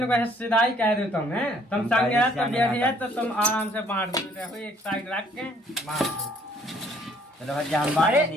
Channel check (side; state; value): both; normal; correlation 0.62